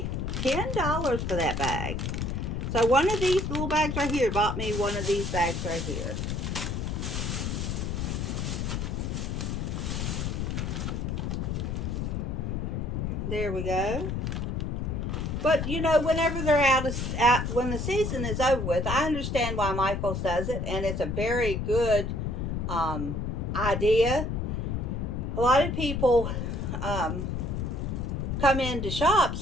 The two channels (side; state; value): left; noise; rumble, 2 dB below the sound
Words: $10 for that bag. So one of these little bags right here bought me one of these bags right here. There we go. But you know, whenever they're when the season is over with, I understand why Micheals does it, and it's a very good idea. A lot of people come in to shop,